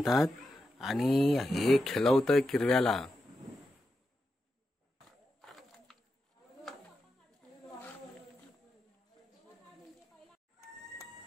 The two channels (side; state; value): both; normal; correlation 0.88